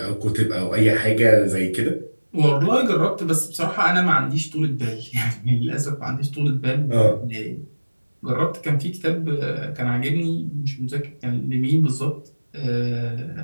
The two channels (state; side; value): inverted; both; correlation -1.00